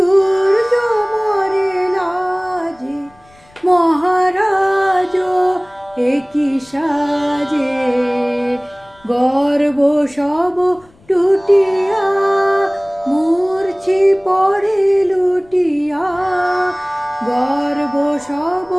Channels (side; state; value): left; noise; rumble, 29 dB below the sound